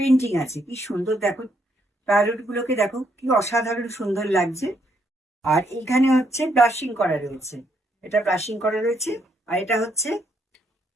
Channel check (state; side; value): normal; both; correlation 0.73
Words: আছে, কি সুন্দর দেখো, প্যারোট গুলোকে দেখো কি অসাধারণ সুন্দর লাগছে। আর এখানে হচ্ছে ব্রাশিং করা রয়েছে, এটা ব্রাশিং করা রয়েছে। আর এটা হচ্ছে